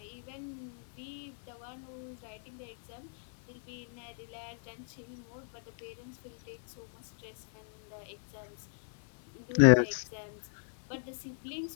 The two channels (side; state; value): right; silent; 54 dB below the other